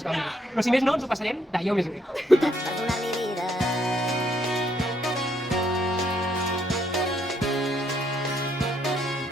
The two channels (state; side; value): normal; both; correlation 0.71